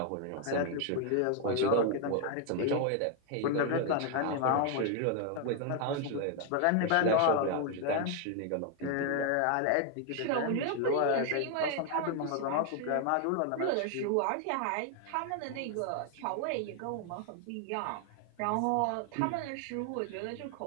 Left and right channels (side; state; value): both; different; correlation 0.00